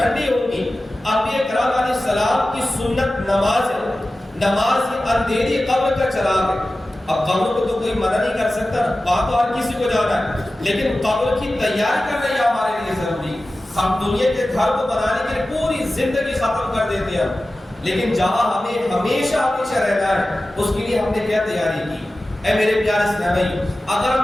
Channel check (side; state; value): both; normal; correlation 0.95